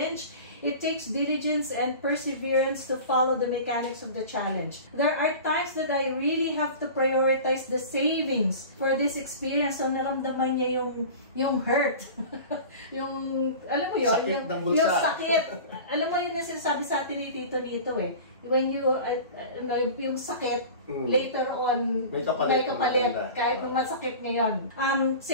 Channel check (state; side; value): inverted; both; correlation -0.36